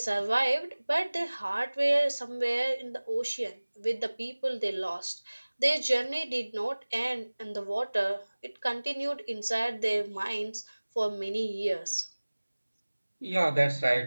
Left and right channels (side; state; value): both; inverted; correlation -1.00